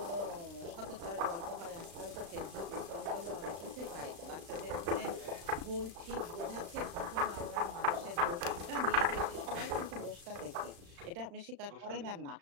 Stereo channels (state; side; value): late; left; 35 ms